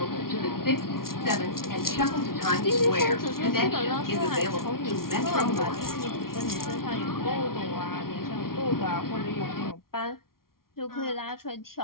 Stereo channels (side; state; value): right; late; 0.93 ms